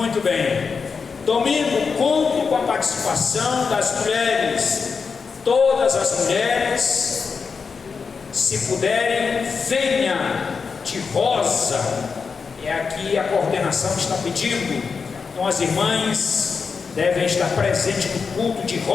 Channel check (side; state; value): right; quieter; 5.3 dB